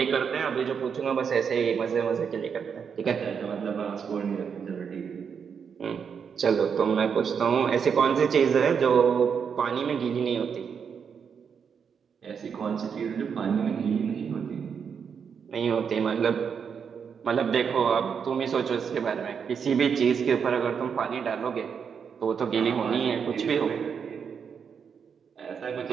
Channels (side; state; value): left; quieter; 6.8 dB